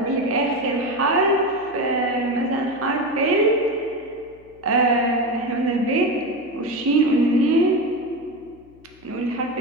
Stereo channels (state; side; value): noise; left; hum, 27 dB below the sound